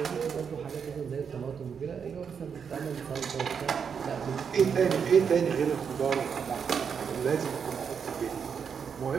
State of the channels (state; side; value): quieter; left; 6.7 dB